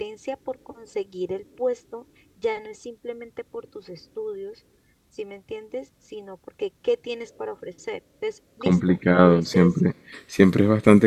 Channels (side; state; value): both; identical; correlation 1.00